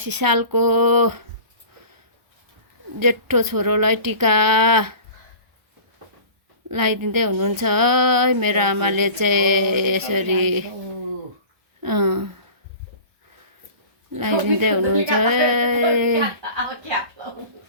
सालको जेठो छोरोलाई टिका लगाइदिँदै हुनुहुन्छ है। मेरो आमाले चाहिँ यसरी लगाइदिँदै हुनुहुन्छ।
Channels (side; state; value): left; late; 1.0 ms